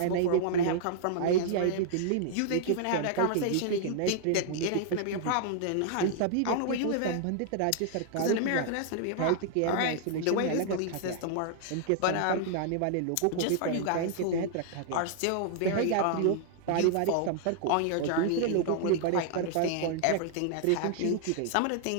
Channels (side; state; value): both; different; correlation -0.01